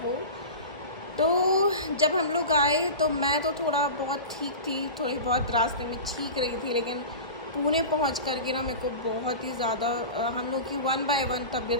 वो। तो जब हम लोग आए तो मैं तो थोड़ा बहुत ठीक थी, थोड़ी बहुत रास्ते में ठीक रही थी, लेकिन पुणे पहुंच कर के ना मेरे को बहुत ही ज़्यादा हम लोग की 1 बाय 1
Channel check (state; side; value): inverted; both; correlation -0.30